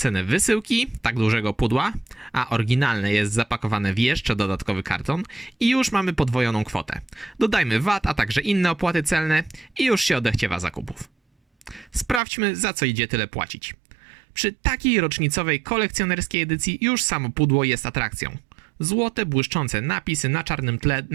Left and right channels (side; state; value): left; drops out; at 12.2 s